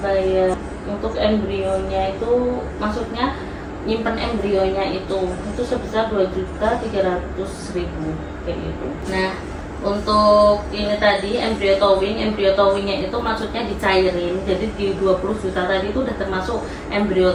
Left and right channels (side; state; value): both; identical; correlation 1.00